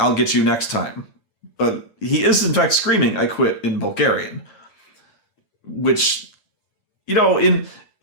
get you next time." But he is in fact screaming "I quit" in Bulgarian. Which,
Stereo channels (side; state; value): right; late; 8.8 ms